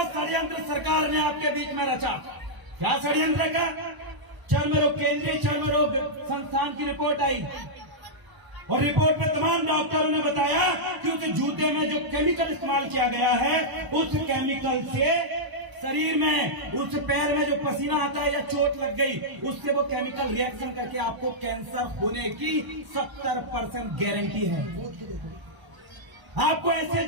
षड्यंत्र सरकार ने आपके बीच में रचा। क्या षड्यंत्र का? चर्म रोग, केंद्रीय चर्म रोग संस्थान की रिपोर्ट आई और रिपोर्ट में तमाम डॉक्टरों ने बताया कि उस जूते में जो केमिकल इस्तेमाल किया गया है, उस केमिकल से शरीर में, उस पैर में जो पसीना आता है या चोट लग गई, उससे वो केमिकल रिएक्शन करके आपको कैंसर होने की 70% गारंटी है। आपको ऐसे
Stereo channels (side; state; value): left; late; 1.0 ms